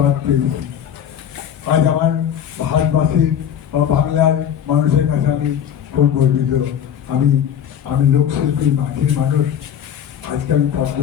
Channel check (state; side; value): quieter; right; 9.1 dB